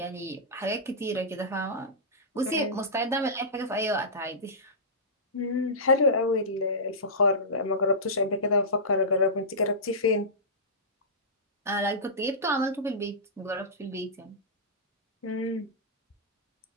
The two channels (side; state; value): both; normal; correlation -0.16